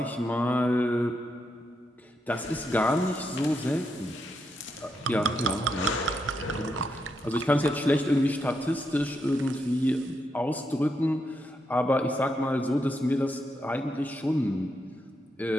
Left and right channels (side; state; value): both; normal; correlation 0.82